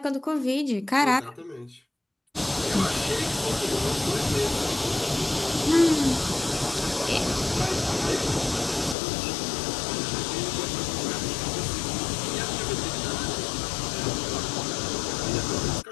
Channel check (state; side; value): drops out; right; at 9.0 s